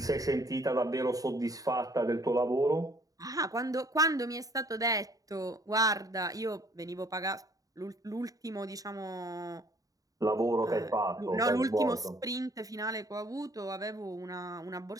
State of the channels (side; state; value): left; late; 0.17 ms